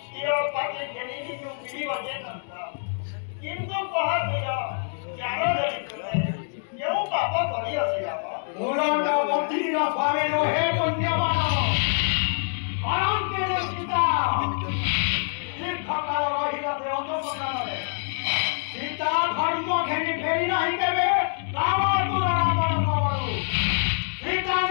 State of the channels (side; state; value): right; silent; digital silence